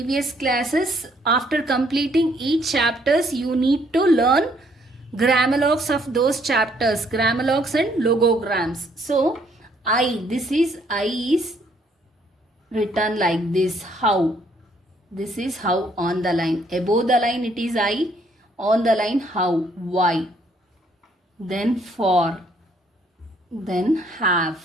classes, after completing each chapters you need to learn grammalogs of those chapters, grammalogs and logograms. So I is written like this, how. This is how on the line. Above the line it is I. On the line how. Y. Then for. Then have.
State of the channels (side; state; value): both; normal; correlation 0.67